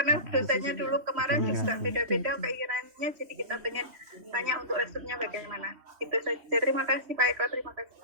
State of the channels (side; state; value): left; late; 3.2 ms